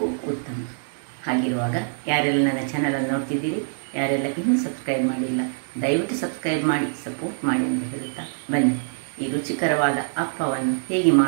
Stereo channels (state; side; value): silent; left; 62 dB below the other